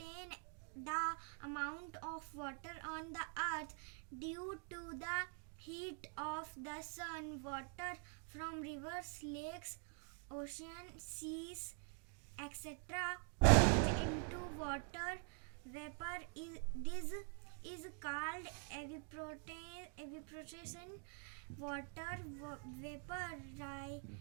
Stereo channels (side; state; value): left; quieter; 37.9 dB